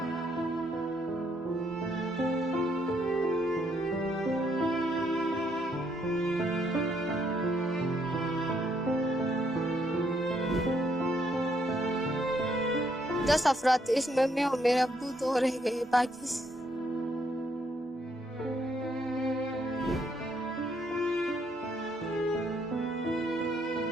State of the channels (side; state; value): both; normal; correlation 0.72